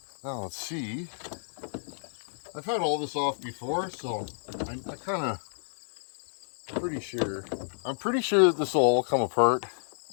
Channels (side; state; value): right; silent; 58 dB below the other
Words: Now let's see. I've had all this off before, so I kind of pretty sure. I'm pretty sure that this will all come apart.